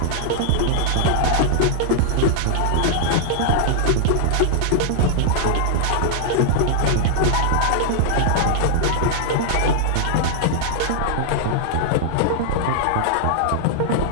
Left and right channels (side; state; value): both; different; correlation -0.01